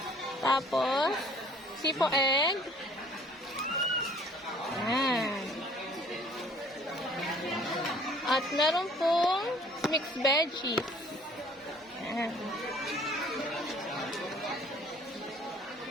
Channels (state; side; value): normal; both; correlation 0.55